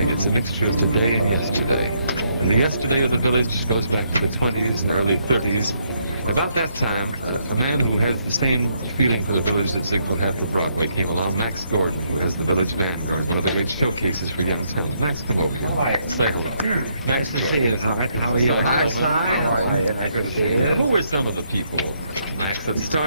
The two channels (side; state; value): both; inverted; correlation -0.74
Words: It's a mixture of today and yesterday. And the yesterday of the village goes back to the 20s and early 30s. About that time, a man who has the same feeling for the village that Ziegfeld had for Broadway came along, Max Gordon, who has the Village Vanguard, one of the great showcases for young talent. Max, come over here. All right. Say hello. Nice Max to Gordon. see you, Hart. How are you? Hi, Si. How are you? Nice to see you. Who were some of the people, Max, that